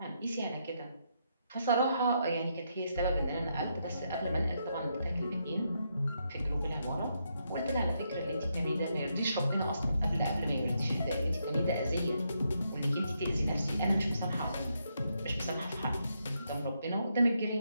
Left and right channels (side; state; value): both; inverted; correlation -0.79